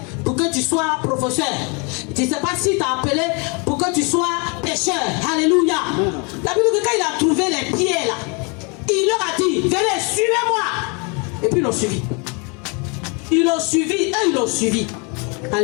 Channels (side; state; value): right; quieter; 32.8 dB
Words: pour que tu sois professeur. Tu ne sais pas s'il t'a appelé pour que tu sois pécheur. Alléluia. Amen. La Bible dit que quand il a trouvé les pieds là, il leur a dit, venez, suivez-moi. Et puis ils l'ont suivi. Ils l'ont suivi et ils l'ont suivi.